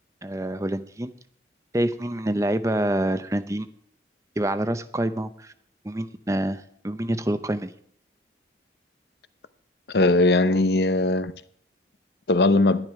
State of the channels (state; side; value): normal; both; correlation 0.52